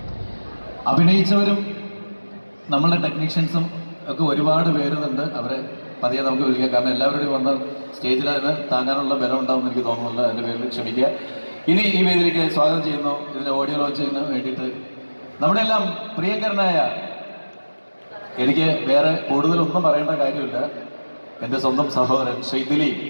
അഭിനയിച്ചവരും നമ്മളുടെ ടെക്നീഷ്യൻസും ഒക്കെ ഒരുപാട് പേരുന്നുണ്ട്. അവരെ പതിയെ നമുക്ക് വിളിക്കാം. കാരണം എല്ലാവരുടെയും വന്ന സ്റ്റേജിൽ അതിന് താങ്ങാനുള്ള ബലം ഉണ്ടാവുമെന്ന് എനിക്ക് തോന്നുന്നില്ല. അതിൻ്റെ പേരിൽ ക്ഷമിക്കുക. ഇനി ഈ വേദിയിലേക്ക് സ്വാഗതം ചെയ്യുന്നു. ഇതിന്റെ ഓഡിയോ ലോഞ്ചിന് വേണ്ടിയിട്ട് നമ്മുടെ എല്ലാം പ്രിയങ്കരനായ, എനിക്ക് വേറെ കൂടുതലൊന്നും പറയേണ്ട കാര്യമില്ല, എൻ്റെ സ്വന്തം സഹോദരൻ ശ്രീ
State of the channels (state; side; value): inverted; both; correlation -1.00